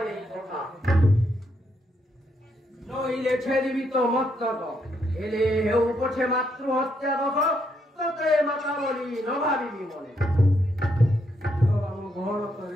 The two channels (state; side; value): normal; both; correlation 0.77